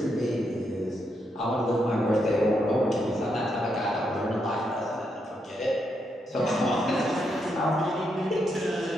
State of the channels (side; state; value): both; normal; correlation 0.80